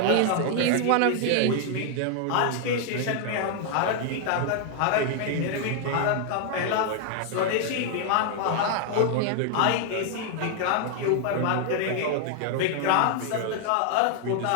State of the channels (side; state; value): both; different; correlation 0.00